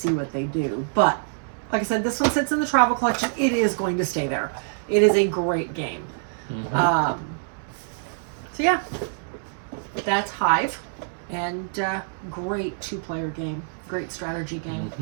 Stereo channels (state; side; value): silent; left; digital silence